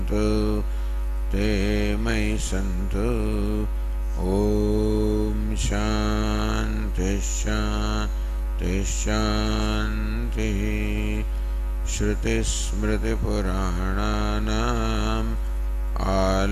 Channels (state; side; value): identical; both; correlation 1.00